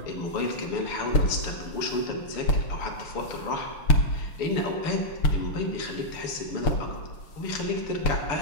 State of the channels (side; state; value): right; late; 6.6 ms